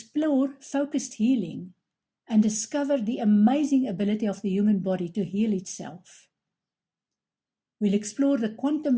focused healing and discover the amazing ability of the human body to heal itself. We'll explore the quantum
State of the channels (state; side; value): identical; both; correlation 1.00